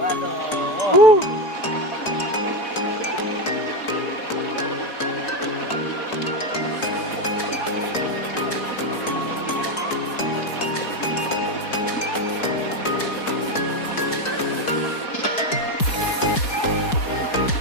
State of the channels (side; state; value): right; late; 4.6 ms